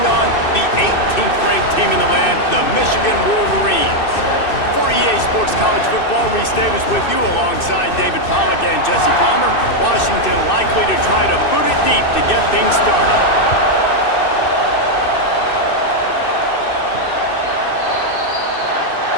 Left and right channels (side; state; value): right; late; 2.6 ms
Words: on the 18th ranked team in the land, the Michigan Wolverines. For EA Sports College Football, Reese Davis with you alongside David Pollack and Jesse Palmer. Washington likely to try to boot it deep to get things started.